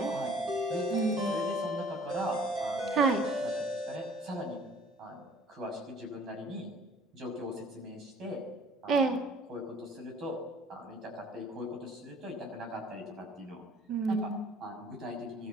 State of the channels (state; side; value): normal; both; correlation 0.54